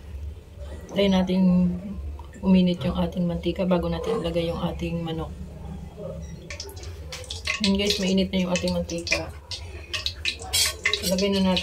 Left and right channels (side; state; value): both; identical; correlation 1.00